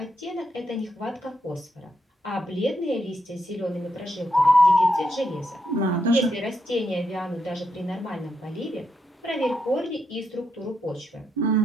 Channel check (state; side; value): normal; both; correlation 0.81